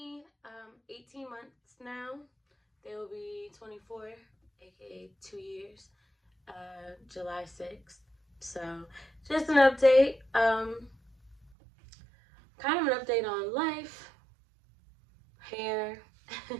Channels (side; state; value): left; drops out; at 11.5 s